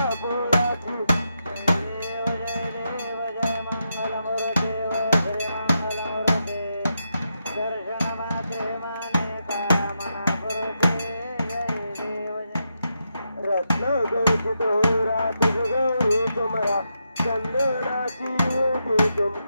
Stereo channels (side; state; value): both; inverted; correlation -0.84